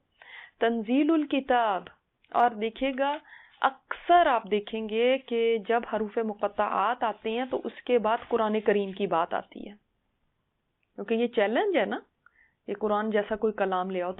تنزیل الکتاب، اور دیکھے گا اکثر آپ دیکھیں گے کہ جب حروف مقطعات آتے ہیں تو اس کے بعد قرآن کریم کی بات آتی ہے، کیونکہ یہ چیلنج ہے نا، یہ قرآن جیسا کوئی کلام لے آؤ،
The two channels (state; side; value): identical; both; correlation 1.00